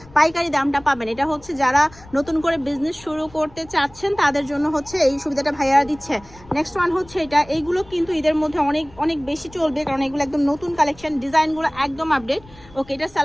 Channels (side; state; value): left; noise; rumble, 22 dB below the sound